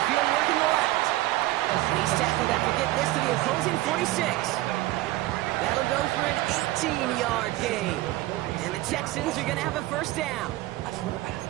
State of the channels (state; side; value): quieter; left; 17.5 dB